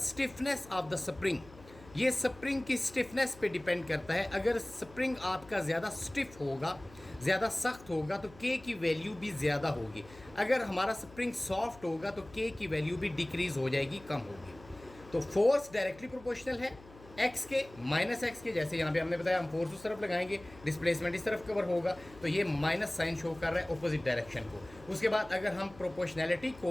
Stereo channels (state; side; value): noise; left; hum, 21 dB below the sound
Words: of the spring, ये स्प्रिंग की स्टिफनेस पे डिपेंड करता है। अगर स्प्रिंग आपका ज़्यादा स्टिफ होगा, ज़्यादा सख्त होगा तो के की वैल्यू भी ज़्यादा होगी, अगर हमारा स्प्रिंग सॉफ्ट होगा तो के की वैल्यू भी डिक्रीज़ हो जाएगी, कम होगी। तो फोर्स डायरेक्टली प्रोपोर्शनल है एक्स के माइनस एक्स के, जैसे यहाँ पे हमने बताया हम फोर्स उस तरफ लगाएंगे, डिस्प्लेसमेंट इस तरफ कवर होगा, तो ये माइनस साइन शो कर रहा है अपोजिट डायरेक्शन को। उसके बाद अगर हम प्रोपोर्शनैलिटी